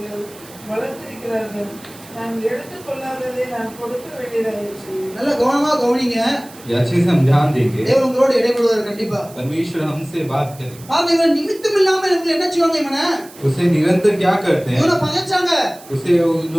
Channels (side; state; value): right; noise; hiss, 21 dB below the sound